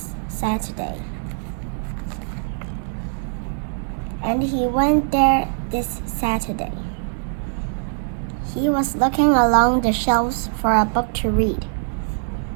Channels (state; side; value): silent; left; digital silence